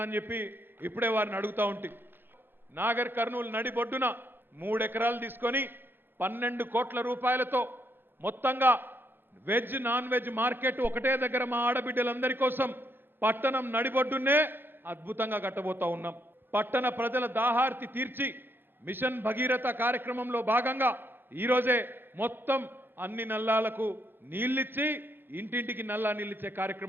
అని చెప్పి ఇప్పుడే వారిని అడుగుతా ఉంటే, నాగర్ కర్నూలు నడిబొడ్డున 3 ఎకరాలు తీసుకొని 12 కోట్ల రూపాయలతో మొత్తంగా వెజ్ నాన్ వెజ్ మార్కెట్ ఒకటే దగ్గర మా ఆడబిడ్డలందరి కోసం పట్టణం నడిబొడ్డునే అద్భుతంగా కట్టబోతా ఉన్నాం. పట్టణ ప్రజల దాహార్తి తీర్చి మిషన్ భగీరథ కార్యక్రమంలో భాగంగా ఈరోజే మొత్తం అన్ని నల్లాలకు నీళ్ళిచ్చి ఇంటింటికి నల్లా నీళ్ళిచ్చే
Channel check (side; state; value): left; late; 0.10 ms